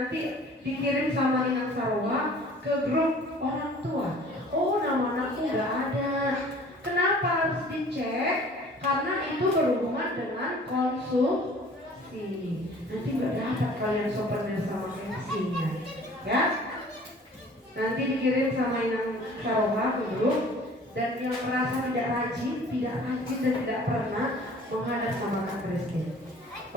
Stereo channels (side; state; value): both; normal; correlation 0.49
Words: dikirim sama Inang Sarawak ke grup orang tua. Oh, nama anakku gak ada. Kenapa harus dicek? Karena itu berhubungan dengan konsumsi. Nanti gak dapat kalian souvenir sama MC-nya, ya? Nanti dikirim sama Inang Sarawak ke grup. Dan yang merasa tidak rajin dan tidak pernah menghadap sama Kak Christine.